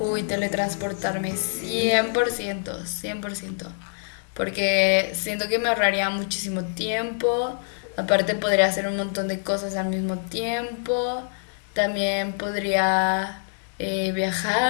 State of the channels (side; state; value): right; silent; digital silence